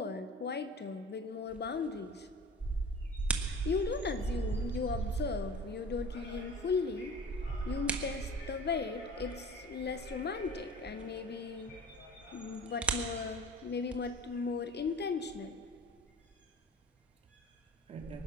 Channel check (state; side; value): normal; both; correlation 0.39